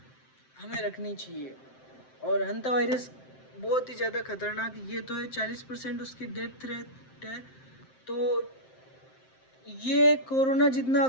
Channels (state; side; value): late; right; 7.7 ms